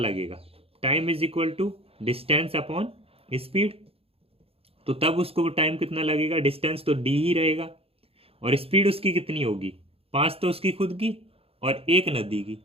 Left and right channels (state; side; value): late; left; 0.28 ms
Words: Time is equal to distance upon speed. तो तब उसको टाइम कितना लगेगा? डिस्टेंस तो d ही रहेगा और स्पीड उसकी कितनी होगी? 5 तो उसकी खुद की और 1 नदी की,